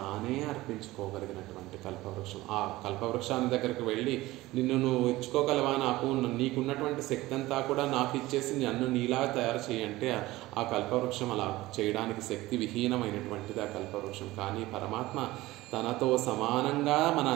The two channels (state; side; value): quieter; left; 18.2 dB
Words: అర్పించుకోగలిగినటువంటి కల్పవృక్షం. ఆ కల్పవృక్షాన్ని దగ్గరికి వెళ్ళి నిన్ను నువ్వు ఇచ్చుకోగలవా, నీకున్నటువంటి శక్తి అంతా కూడా నాకు ఇచ్చేసి నన్ను నీలా తయారు చేయంటే ఆ కల్పవృక్షం అలా చేయడానికి శక్తి విహీనమైనటువంటిది ఆ కల్పవృక్షం. కానీ పరమాత్మ తనతో సమానంగా మన